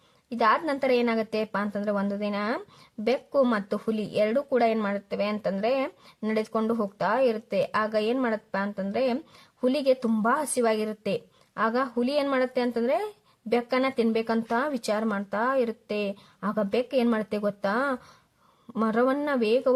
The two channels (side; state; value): both; identical; correlation 1.00